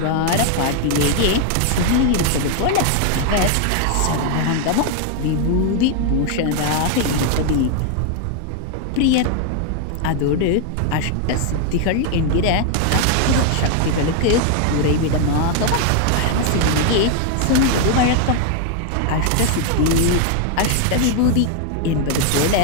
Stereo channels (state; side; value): different; both; correlation 0.00